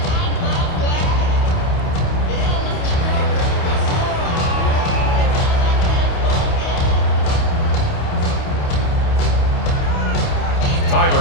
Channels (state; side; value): late; right; 28 ms